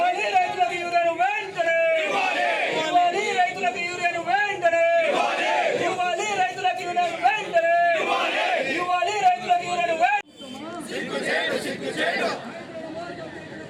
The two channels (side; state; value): both; identical; correlation 1.00